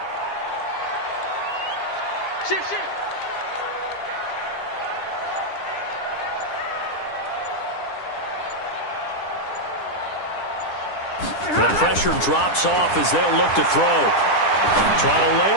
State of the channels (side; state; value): right; late; 10 ms